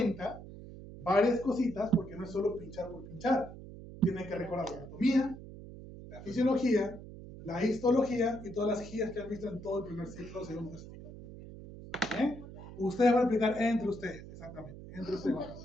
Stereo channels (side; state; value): right; noise; hum, 14 dB below the sound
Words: varias cositas, porque no es solo pinchar por pinchar. Tienen que recordar la anatomía, la fisiología, la histología y todas las guías que han visto en todo el primer ciclo, segundo ciclo. ¿Bien? Ustedes van a aplicar entre ustedes, exactamente. Entre ustedes van a